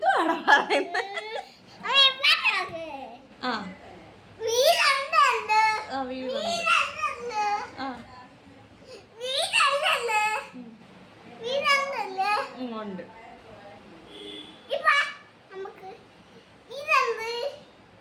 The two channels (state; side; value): identical; both; correlation 1.00